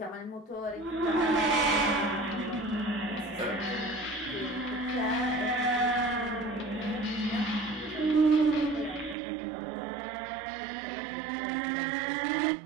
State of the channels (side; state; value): left; drops out; at 9.2 s